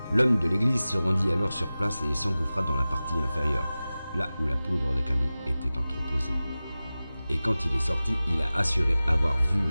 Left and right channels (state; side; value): inverted; both; correlation -0.97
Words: L'homme de l'église se rendit alors sur place et s'engouffra dans la partie inférieure, là où la poudre de canon était entreposée. Et quand il est sorti, il a assuré avoir vu